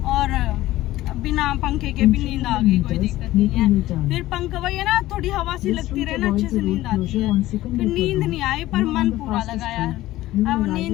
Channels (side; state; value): right; quieter; 16.1 dB